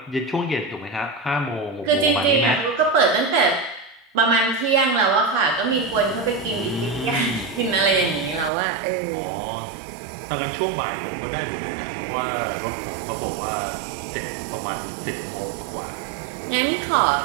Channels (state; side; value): drops out; left; at 8.5 s